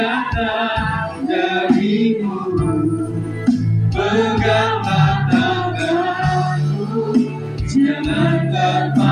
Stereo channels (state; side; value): identical; both; correlation 1.00